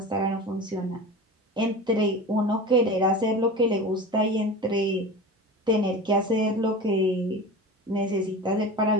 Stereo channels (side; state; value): both; normal; correlation 0.32